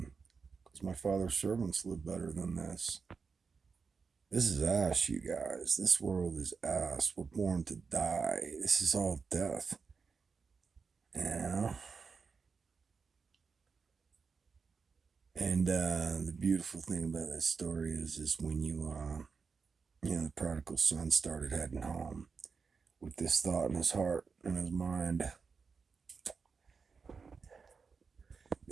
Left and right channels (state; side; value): quieter; left; 5.2 dB